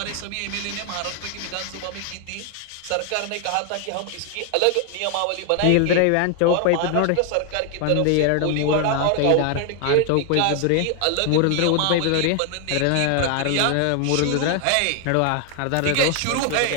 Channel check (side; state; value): both; different; correlation 0.00